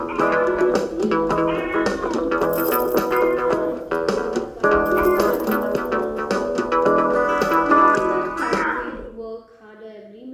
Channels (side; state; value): both; identical; correlation 1.00